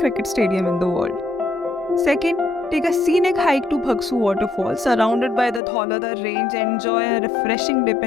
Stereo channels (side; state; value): right; drops out; at 5.6 s